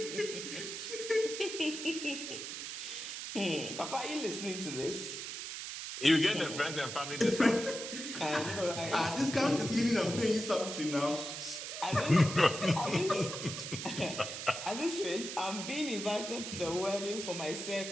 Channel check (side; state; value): right; noise; hiss, 7 dB below the sound